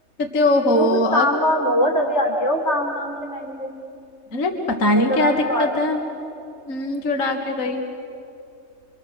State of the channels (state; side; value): late; right; 3.2 ms